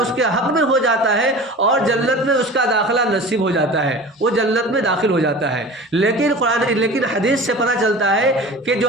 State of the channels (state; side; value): normal; both; correlation 0.37